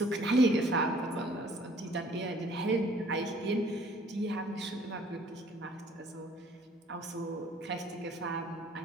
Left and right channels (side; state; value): both; normal; correlation 0.57